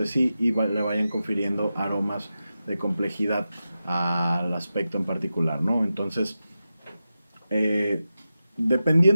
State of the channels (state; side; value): inverted; both; correlation -0.92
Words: sí y le vayan confiriendo aromas de complejidad al aspecto en particular, ¿no? Entonces,